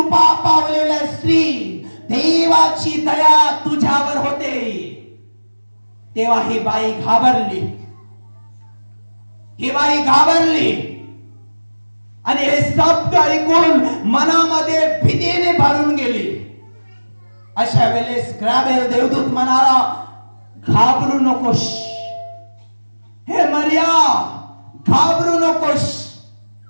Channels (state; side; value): inverted; both; correlation -1.00